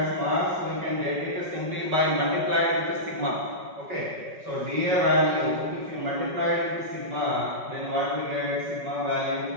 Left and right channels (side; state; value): left; late; 5.3 ms